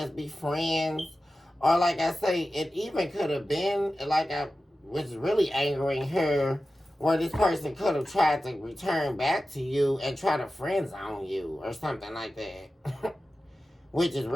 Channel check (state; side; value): normal; both; correlation 0.94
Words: be friends? Or like I say, it even could have been like I was really angering her, where this person could have tried to return back to you and try to friend zone you or something like that. Which is